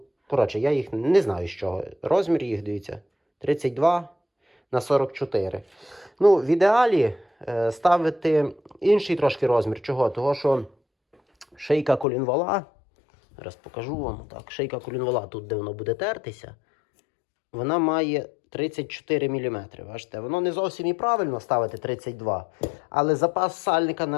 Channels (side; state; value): right; drops out; at 12.1 s